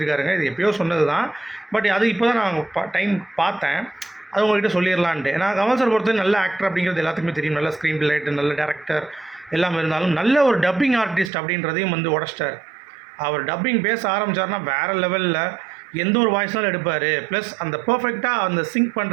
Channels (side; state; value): left; drops out; at 11.3 s